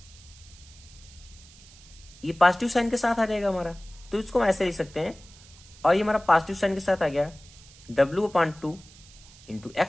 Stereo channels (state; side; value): noise; right; hiss, 22 dB below the sound